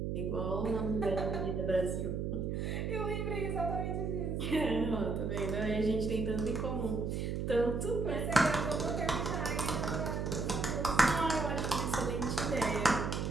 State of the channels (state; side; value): noise; right; hum, 1 dB below the sound